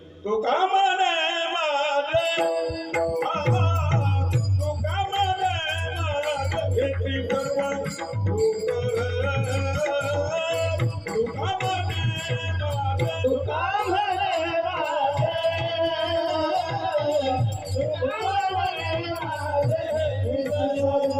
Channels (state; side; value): identical; both; correlation 1.00